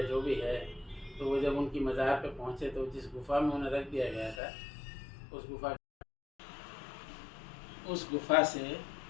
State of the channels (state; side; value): drops out; right; at 4.4 s